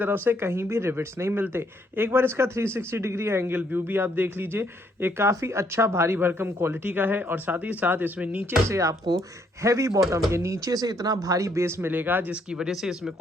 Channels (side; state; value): both; normal; correlation 0.70